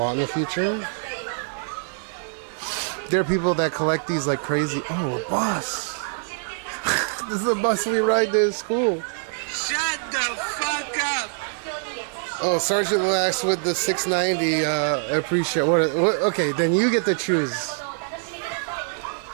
in the future. There are people that collect these like crazy. Oh, a bus. This is a bus we ride to school. Shut the fuck up! Oh, Sergeant Lax with the 690. I appreciate what? Okay, then you get to choose.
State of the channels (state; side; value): silent; left; 62 dB below the other